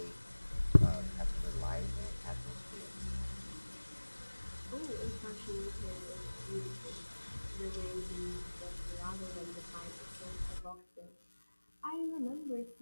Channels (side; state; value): both; inverted; correlation -1.00